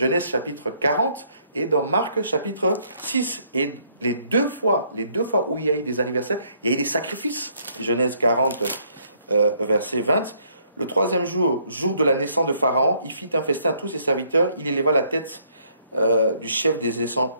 chapitre 40 et dans Marc chapitre 6. Et les deux fois où il y a eu des anniversaires, il y a eu des sacrifices. Genèse 40, verset 20. Le 3e jour, jour de la naissance de Pharaon, il fit un festin à tous ses serviteurs. Il éleva la tête du chef des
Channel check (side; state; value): both; inverted; correlation -0.67